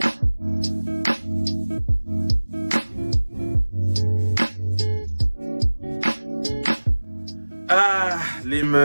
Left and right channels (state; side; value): inverted; both; correlation -1.00